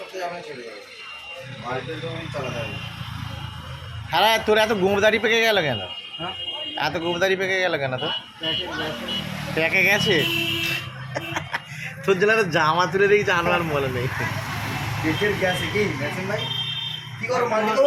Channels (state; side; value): identical; both; correlation 1.00